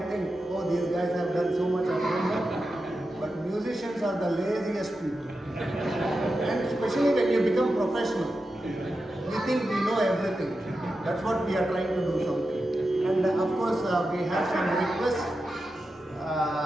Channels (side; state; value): both; normal; correlation 0.90